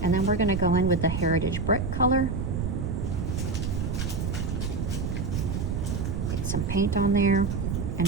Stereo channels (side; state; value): right; noise; rumble, 1 dB below the sound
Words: and then we're going to go in with the Heritage Brick color. Get some paint on there, and